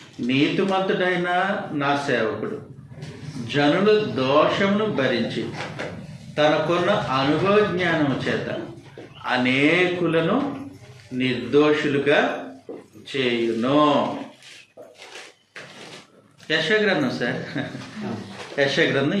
నీతిమంతుడైన నా సేవకుడు జనుల దోషమును భరించి తనకున్న అనుభవ జ్ఞానం చేత అనేకులను నిర్దోషులుగా చేయును. యెషయా గ్రంథం సార్, యెషయా గ్రంథం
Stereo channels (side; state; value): both; identical; correlation 1.00